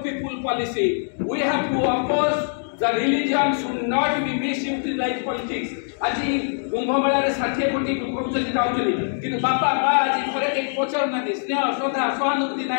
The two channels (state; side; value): silent; right; digital silence